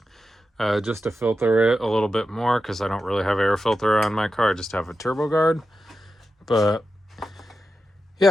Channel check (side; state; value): both; normal; correlation 0.90